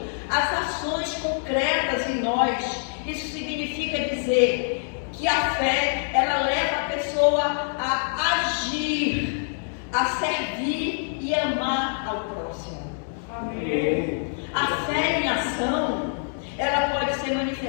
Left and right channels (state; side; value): silent; right; digital silence